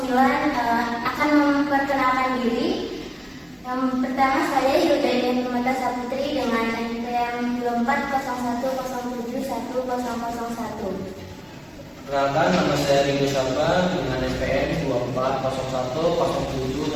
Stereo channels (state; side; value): identical; both; correlation 1.00